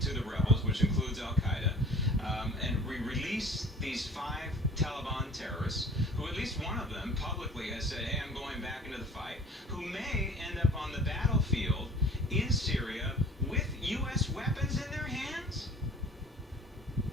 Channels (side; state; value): both; normal; correlation 0.47